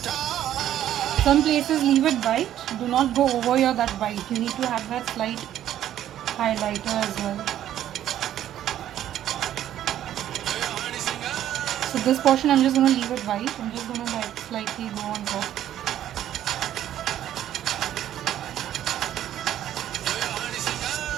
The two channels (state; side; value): quieter; left; 11.7 dB